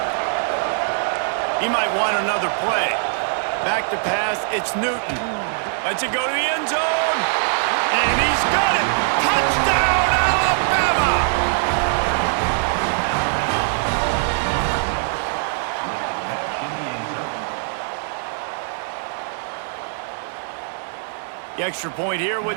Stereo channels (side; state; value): left; silent; digital silence